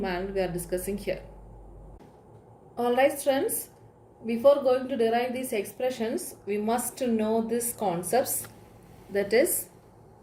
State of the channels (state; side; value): identical; both; correlation 1.00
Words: we are discussing here. Alright friends, before going to derive these expressions, we must know these concepts, that is,